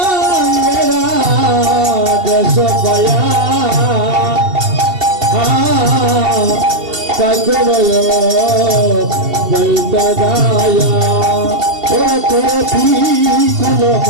দেশ পায়া ঠাকুর অপৈত্র গায়া ওরা করতি কুল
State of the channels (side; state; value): left; late; 2.7 ms